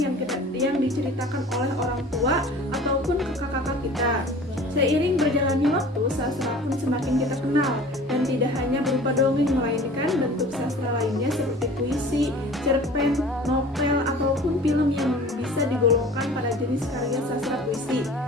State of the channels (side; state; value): both; normal; correlation 0.44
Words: yang diceritakan oleh orang tua ataupun kakak-kakak kita. Seiring berjalannya waktu, sastra pun semakin kita kenal, dan tidak hanya berupa dongeng, melainkan bentuk sastra lainnya seperti puisi, cerpen, novel, ataupun film yang bisa digolongkan pada jenis karya sastra puisi,